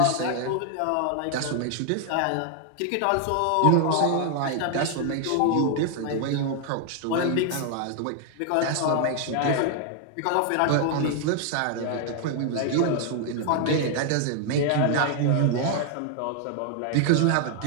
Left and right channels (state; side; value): different; both; correlation 0.00